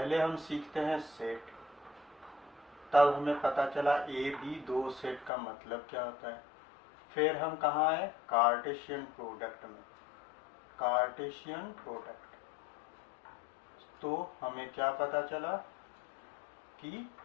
हम सीखते हैं सेट, तब हमें पता चला ए बी दो सेट का मतलब क्या होता है। फिर हम कहाँ आए? कार्टेशियन प्रोडक्ट में। कार्टेशियन प्रोडक्ट, तो हमें क्या पता चला कि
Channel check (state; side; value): drops out; right; at 5.3 s